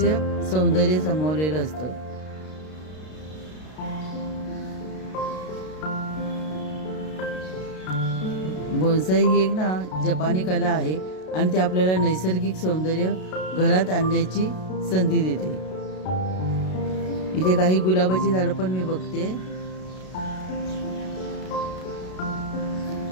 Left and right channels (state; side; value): late; right; 32 ms